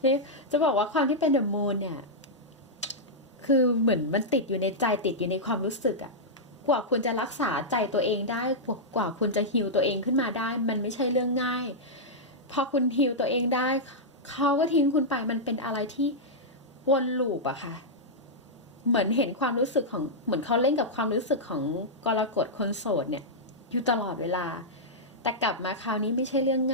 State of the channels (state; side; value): normal; both; correlation -0.08